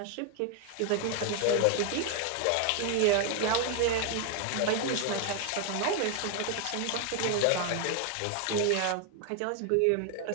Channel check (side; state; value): both; different; correlation 0.00